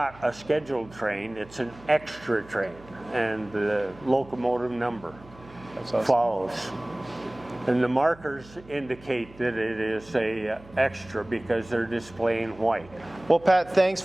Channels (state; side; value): noise; right; hum, 22 dB below the sound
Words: a scheduled train, it's an extra train, and the locomotive number follows. And the markers indicate that it is a extra because they're displaying white. Well, Pat, thanks